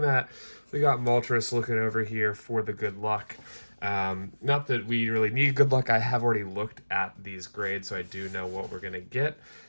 We got Moltres looking over here for the good luck. Not that we really need good luck. I have already looked at these grades, so I do know what we're gonna get.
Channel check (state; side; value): inverted; both; correlation -1.00